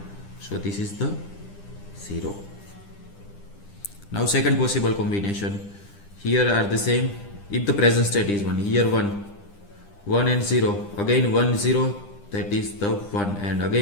So this is the 0. Now second possible combination. Here are the same. If the present state is 1, here 1 and 0. Again 1, 0, that is the 1, and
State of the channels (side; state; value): right; late; 9.9 ms